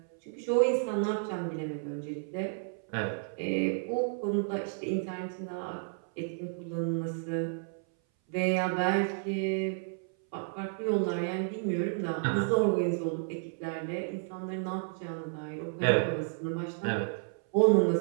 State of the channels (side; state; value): left; silent; 57 dB below the other